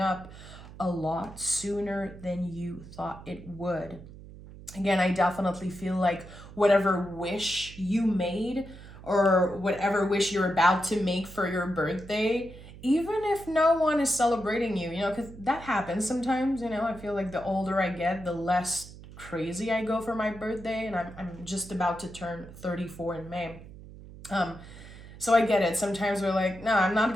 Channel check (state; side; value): noise; right; hum, 16 dB below the sound